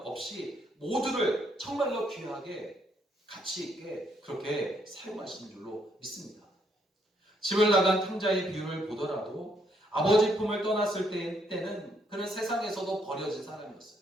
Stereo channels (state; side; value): normal; both; correlation 0.72